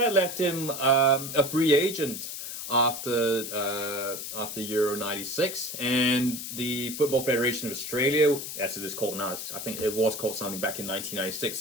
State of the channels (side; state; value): left; noise; hiss, 7 dB below the sound